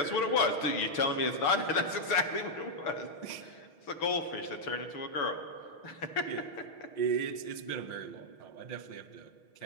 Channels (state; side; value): late; right; 6.3 ms